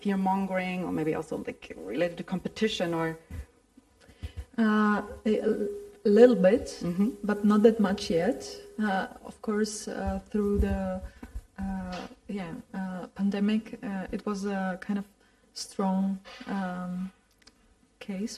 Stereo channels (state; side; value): identical; both; correlation 1.00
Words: or maybe also related to competition, or a little bit, but not that much yet. Of course, through the pandemic, it was a kind of strong